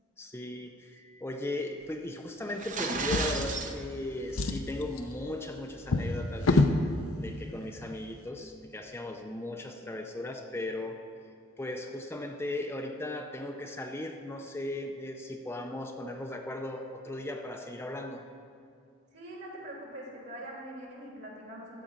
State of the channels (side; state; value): both; normal; correlation 0.60